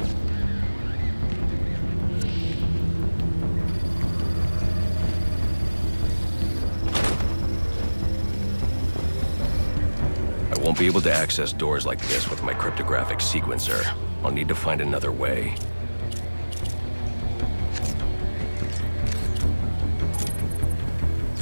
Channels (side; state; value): both; inverted; correlation -1.00